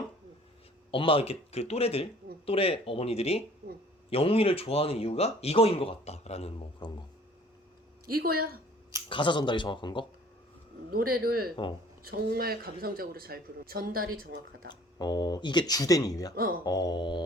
엄마 이렇게 그 또래 어머니들이 영웅이를 좋아하는 이유가 이거인 것 같다라는 뭐 그런 거. 이거야. 가사 전달이 정확한 거? 노래를 정말 감성적으로 잘 부르는 전달이 정확하다. 이게 주된 이유야?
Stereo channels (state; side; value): normal; both; correlation 0.53